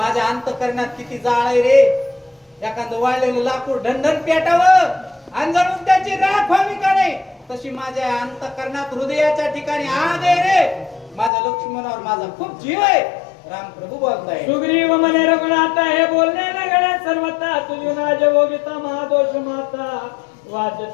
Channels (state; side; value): drops out; right; at 11.3 s